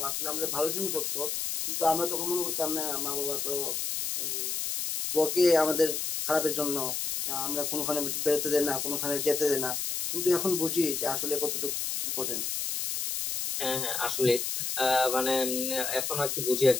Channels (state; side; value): noise; left; hiss, 2 dB below the sound